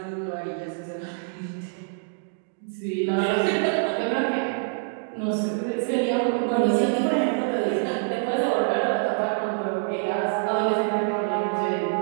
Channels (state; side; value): silent; left; digital silence